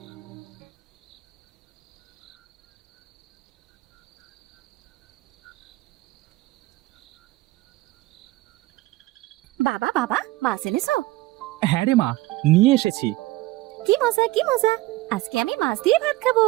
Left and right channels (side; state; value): left; quieter; 18.3 dB